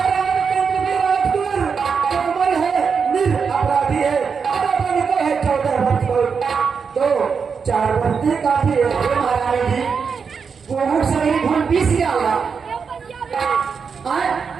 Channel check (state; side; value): quieter; left; 5.9 dB